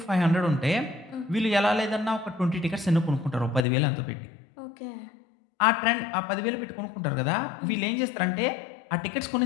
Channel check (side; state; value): right; drops out; at 3.7 s